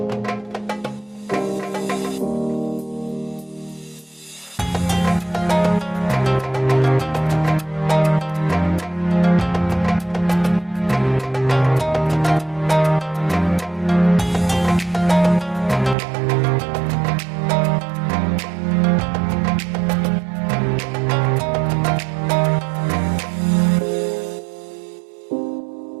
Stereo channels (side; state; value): left; drops out; at 16.0 s